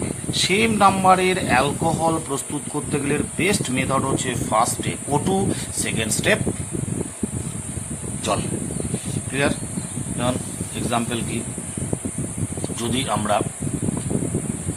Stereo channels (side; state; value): both; identical; correlation 1.00